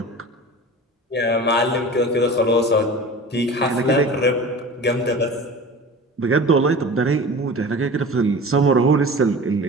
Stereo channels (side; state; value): both; normal; correlation 0.37